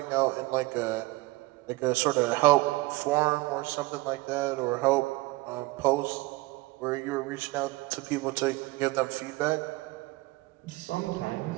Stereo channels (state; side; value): quieter; left; 21.1 dB